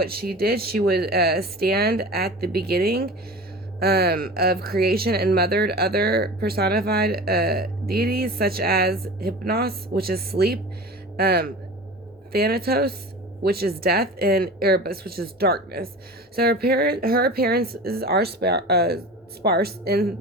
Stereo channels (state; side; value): normal; both; correlation 0.35